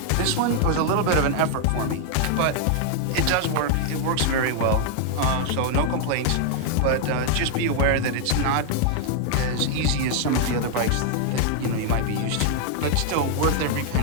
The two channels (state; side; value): different; both; correlation 0.00